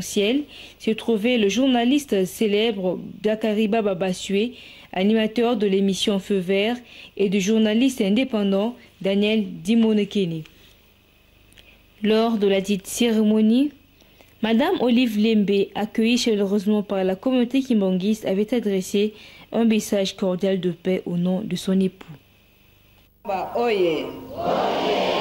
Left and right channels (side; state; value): both; identical; correlation 1.00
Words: se trouvait le journaliste célèbre Dakariba Babasue, animateur de l'émission Feu Vert, et du journaliste indépendant Daniel Dimonekene. Lors de la dite cérémonie, Madame Olive Lembe, accueillie chaleureusement par la communauté kimbanguiste, avait adressé un message cordial de paix au nom de son époux. Oye.